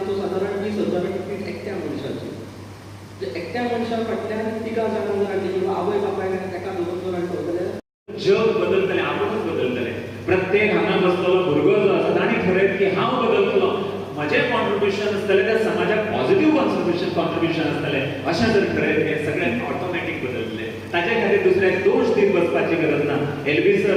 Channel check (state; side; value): identical; both; correlation 1.00